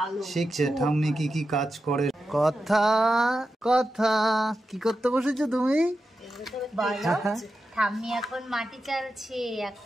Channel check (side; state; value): both; normal; correlation 0.90